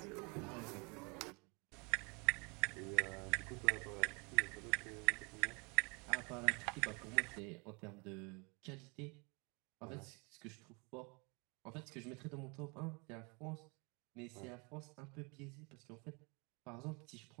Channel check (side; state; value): left; quieter; 30.9 dB